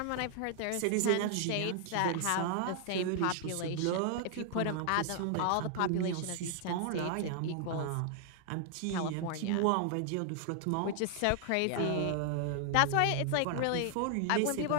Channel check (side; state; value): both; different; correlation 0.00